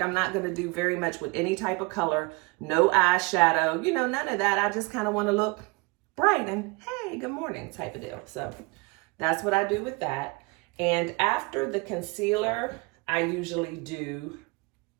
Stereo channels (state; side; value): quieter; left; 27.0 dB